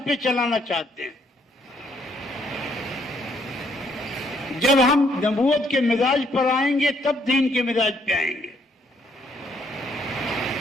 پہ چلانا چاہتے ہیں، جب ہم نبوت کے مزاج پر آئیں گے تب دین کے مزاج پہ آئیں گے۔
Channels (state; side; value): normal; both; correlation 0.69